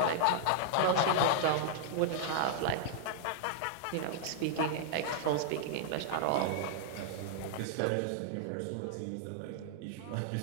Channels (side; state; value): both; different; correlation -0.01